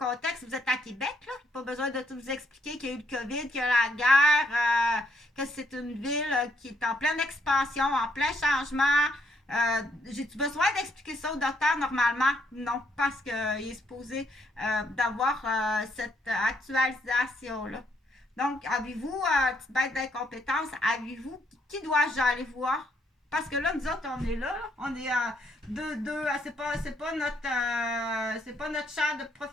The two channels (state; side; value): normal; both; correlation 0.73